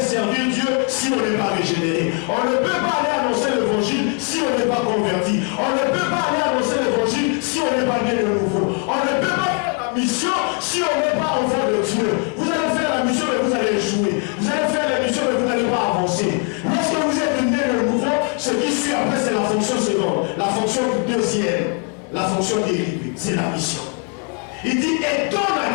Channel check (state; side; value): quieter; right; 39.7 dB